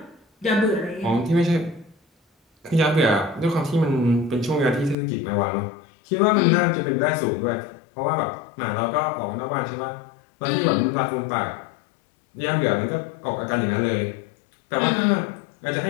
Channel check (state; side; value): drops out; right; at 5.0 s